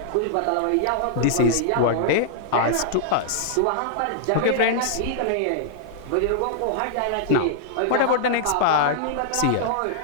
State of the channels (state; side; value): different; both; correlation -0.01